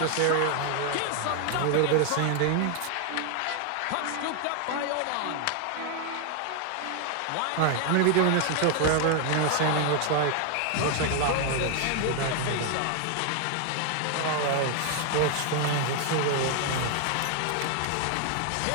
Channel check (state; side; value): different; both; correlation 0.00